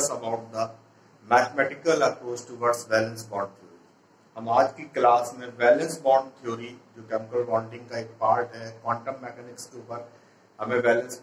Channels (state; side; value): identical; both; correlation 1.00